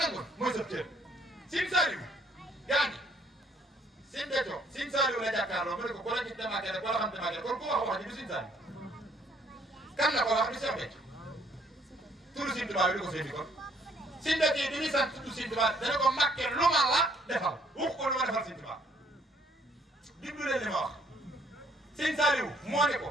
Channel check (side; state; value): both; normal; correlation 0.64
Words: mooy sa cër Sëriñ Saliou gaa ñi Sëriñ Béthio Sëriñ Saliou la jàkkaarloo mu ne ko ku la gis demaatee rek wala xam demaatee kon ku wax ji du Sëriñ Saliou kan la ko wax du Cheikh Béthio turu Sëriñ Tuubaa bi du ko féeti kon Sëriñ Béthio yi bi muy sant tudd Sëriñ Tuubaa dana ko Mbàkke lu ma la defal wax ko lu ma defal Sëriñ Tuubaa diglu leen li ma wax Sëriñ Saliou moo ne ko